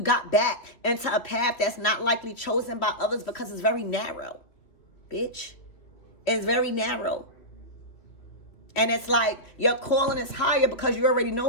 got back into a path that's not likely chosen by others because it's very narrow. Bitch. It's very narrow. And it's like your calling is higher because you already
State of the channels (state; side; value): late; right; 3.0 ms